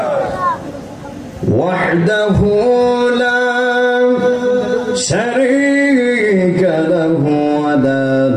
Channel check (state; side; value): identical; both; correlation 1.00